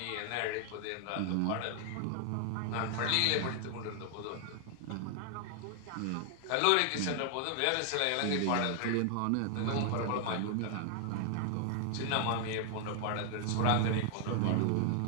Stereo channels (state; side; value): different; both; correlation 0.00